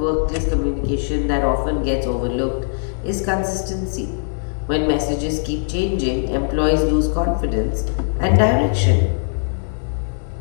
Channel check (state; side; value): silent; right; digital silence